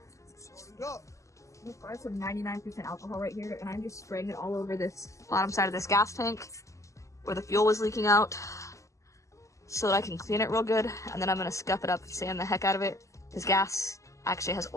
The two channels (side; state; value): right; late; 0.15 ms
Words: I have some 99% alcohol right here, and I'm just spraying it all over this bottom side of this gas tank where the fuel was leaking out so that I can clean it real good, and then I'm going to scuff it up and sand the heck out of it. This gas actually has